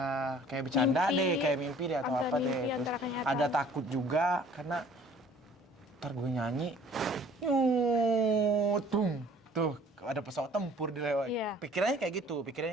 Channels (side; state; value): both; normal; correlation 0.53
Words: bercanda deh, kayak mimpi deh atau apa deh. Terus ada takut juga karena ntar gue nyanyi, tuh ada pesawat tempur di lewat. Pikirannya kayak gitu.